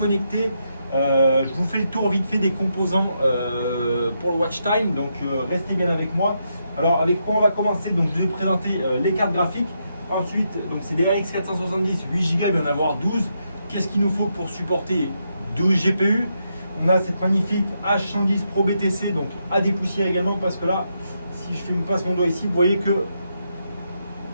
Je vous fais le tour vite fait des composants pour le watch time. Donc restez bien avec moi. Alors avec quoi on va commencer? Donc je vais vous présenter les cartes graphiques. Ensuite, donc c'est des RX 470 8 Go, il va y en avoir 12. Qu'est-ce qu'il nous faut pour supporter 12 GPU? On a cette magnifique H110 Pro BTC, donc à dépoussiérer également, parce que là, si je passe mon doigt ici, vous voyez que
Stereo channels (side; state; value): both; inverted; correlation -0.81